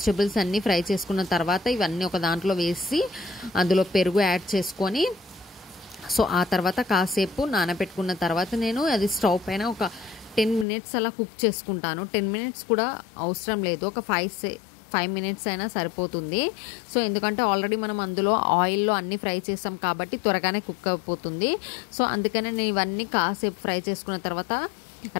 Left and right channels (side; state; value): right; drops out; at 10.7 s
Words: అన్నీ ఫ్రై చేసుకున్న తర్వాత ఇవన్నీ ఒక దాంట్లో వేసి అందులో పెరుగు యాడ్ చేసుకొని సో ఆ తర్వాత కాసేపు నానబెట్టుకున్న తర్వాత నేను అది స్టవ్ పైన ఒక 10 మినిట్స్ అలా కుక్ చేసుకుంటాను. 10 మినిట్స్ కూడా అవసరం లేదు, ఒక 5 మినిట్స్ అయినా సరిపోతుంది. సో ఎందుకంటే ఆల్రెడీ మనం అందులో ఆయిల్లో అన్నీ ఫ్రై చేసాం కాబట్టి త్వరగానే కుక్ అయిపోతుంది. సో అందుకనే నేను ఇవన్నీ కాసేపు ఫ్రై చేసుకున్న తర్వాత